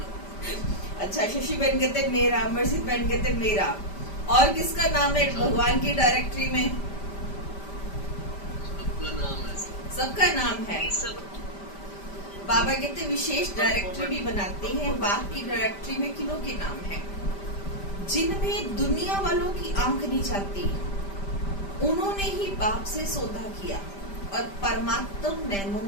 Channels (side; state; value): right; late; 5.1 ms